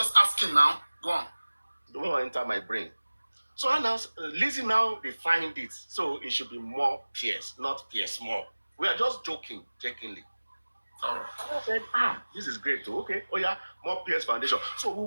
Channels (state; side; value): inverted; both; correlation -1.00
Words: Go on. Don't want to enter my brain. So Lizzie now defined it. So it should be more Pierce, not Pierce Moore. We are just joking, jokingly. I said, this is great too. Okay, oh yeah, more Pierce Foundation. So we